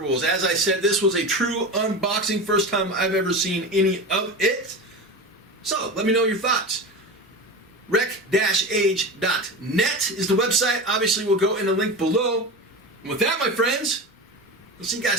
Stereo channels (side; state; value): both; normal; correlation 0.26